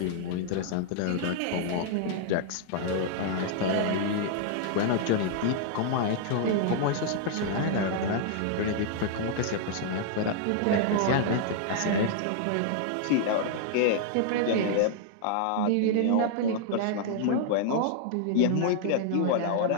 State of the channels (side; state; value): both; different; correlation -0.01